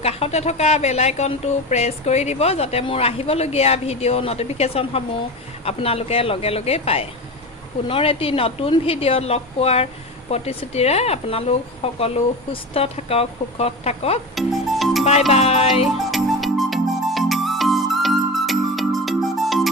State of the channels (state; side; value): normal; both; correlation 0.26